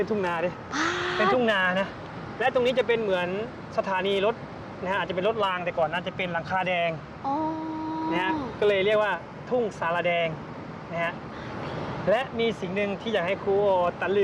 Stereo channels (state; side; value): identical; both; correlation 1.00